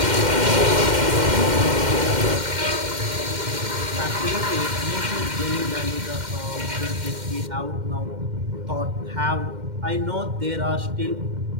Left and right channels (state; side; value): late; left; 2.1 ms